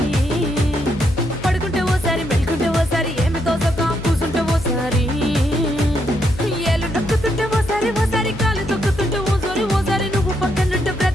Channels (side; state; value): left; noise; hum, 12 dB below the sound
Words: పడుకుంటే ఓసారి మెలుకుంటే ఓసారి ఏమి తోసక కూసుంటే ఓసారి ఏళ్ళు నొక్కుతుంటే ఓసారి ఓసారి కాలు తొక్కుతుంటే ఓసారి ఓసారి నువ్వు పక్కనుంటే